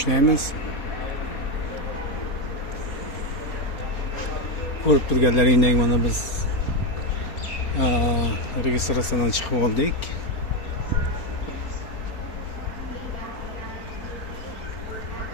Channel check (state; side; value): late; right; 4.4 ms